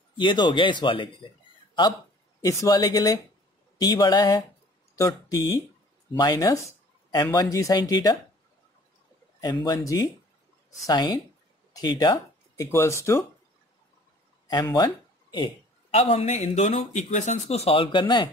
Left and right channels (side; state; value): both; normal; correlation 0.52